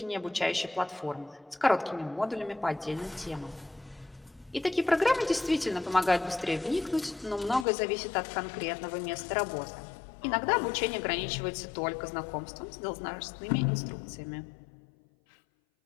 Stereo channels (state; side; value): drops out; right; at 7.7 s